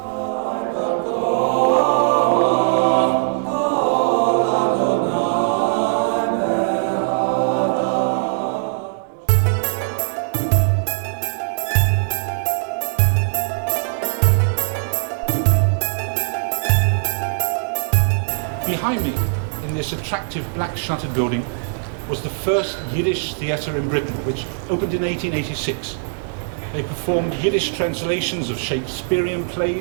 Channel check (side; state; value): left; silent; 61 dB below the other